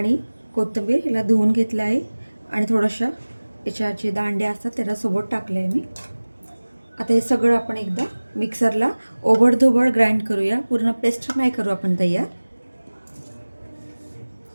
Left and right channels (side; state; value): both; inverted; correlation -1.00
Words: कोथिंबीर हिला धुवून घेतलं आहे आणि थोडंसं याच्या जे दांड्या असतात त्याला सोबत टाकलं आहे मी। आता हे सगळं आपण एकदा मिक्सरला ओबडधोबड ग्राइंड करूया, पूर्ण पेस्ट नाही करू आपण तयार।